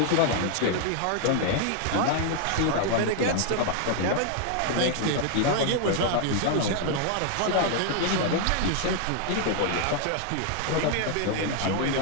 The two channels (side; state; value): both; different; correlation 0.00